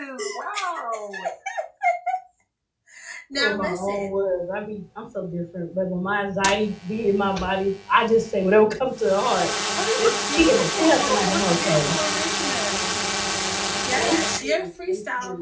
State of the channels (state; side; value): identical; both; correlation 1.00